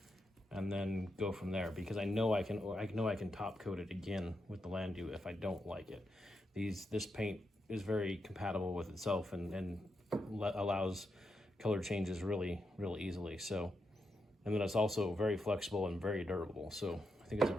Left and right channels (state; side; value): normal; both; correlation 0.84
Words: and then go from there, because I know I can top coat it again with the Landu if I don't like it. This paint is very compatible with itself and allows color changes really easily. So, and then it's also very flexible and very durable. So I think it's a